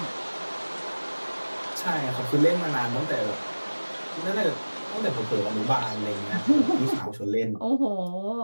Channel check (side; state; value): both; inverted; correlation -1.00